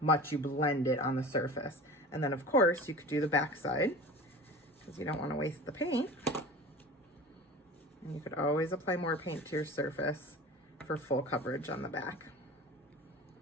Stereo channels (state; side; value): normal; both; correlation 0.36